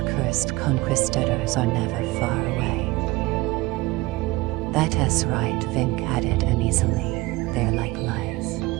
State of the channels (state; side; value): quieter; left; 20.6 dB